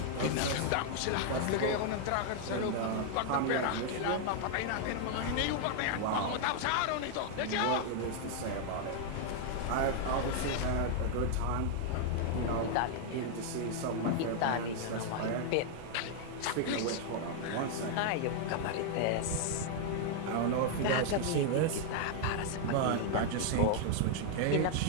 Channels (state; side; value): different; both; correlation 0.00